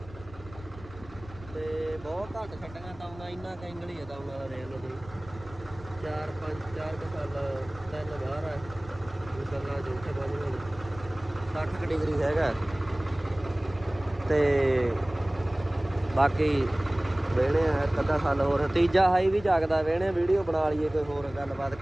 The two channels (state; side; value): noise; left; rumble, 18 dB below the sound